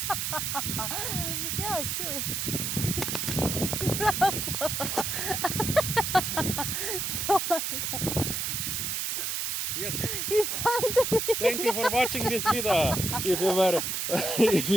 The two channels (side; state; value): right; noise; hiss, 1 dB below the sound